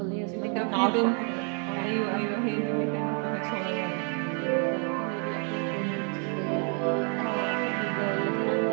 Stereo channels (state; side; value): quieter; left; 39.2 dB